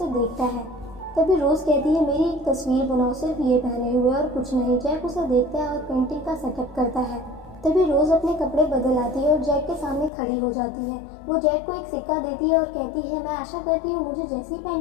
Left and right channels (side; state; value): right; drops out; at 10.1 s